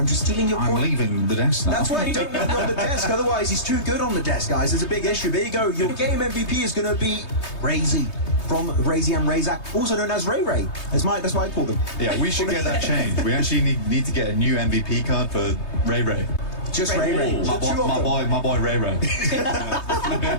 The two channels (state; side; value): late; right; 3.2 ms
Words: I'm just stealing your point. I'm leaving the desk now. That's why you don't want me on the desk. Otherwise, he's too good on the desk, guys. There's a big issue. There you go. Your game MVP is going to be Razy from Razy and Razak, also known as Ray Ray. That's why I call them. Yeah, we should get that changed. We actually need to get a new MVP card for Ray Ray. Just Ray Ray. My boy Ray Ray.